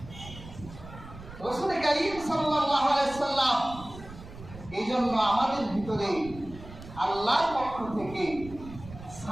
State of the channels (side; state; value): right; noise; rumble, 15 dB below the sound